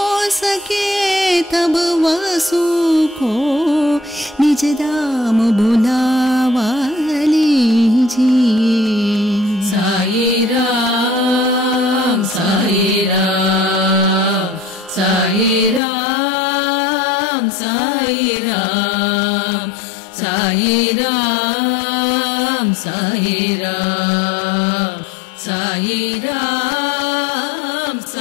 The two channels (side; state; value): right; drops out; at 15.8 s